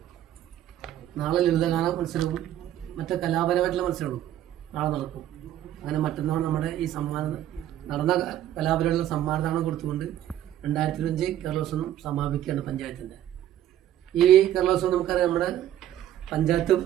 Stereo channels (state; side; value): quieter; left; 12.1 dB